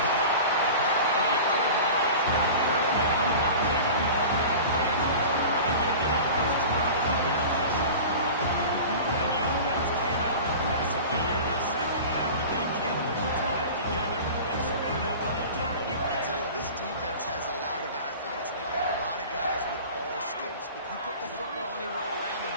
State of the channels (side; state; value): both; inverted; correlation -0.36